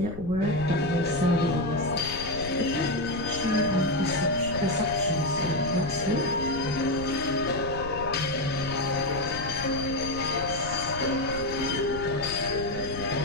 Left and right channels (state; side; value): noise; left; rumble, 10 dB below the sound